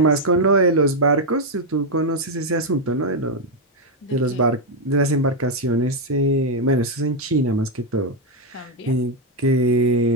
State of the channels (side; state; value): both; normal; correlation 0.02